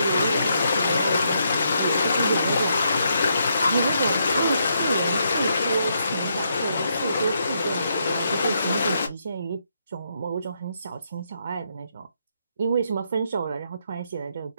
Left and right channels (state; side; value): inverted; both; correlation -0.77